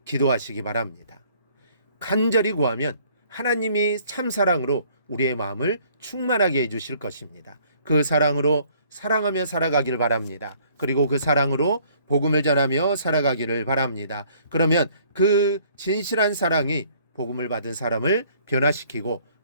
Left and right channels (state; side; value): inverted; both; correlation -0.60